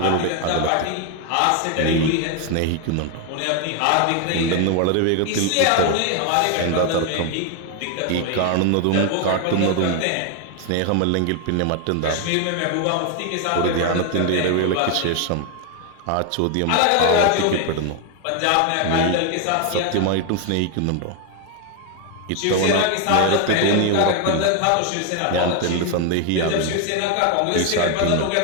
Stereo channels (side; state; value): both; different; correlation 0.01